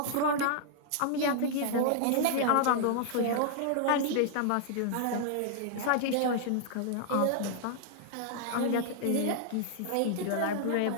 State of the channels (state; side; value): different; both; correlation -0.01